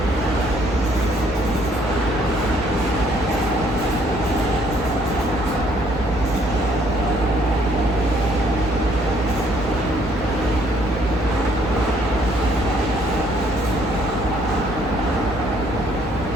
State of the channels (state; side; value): normal; both; correlation 0.65